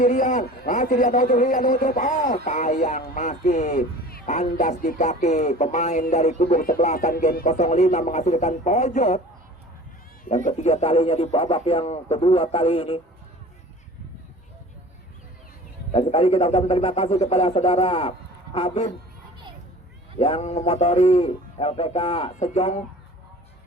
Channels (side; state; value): both; normal; correlation 0.42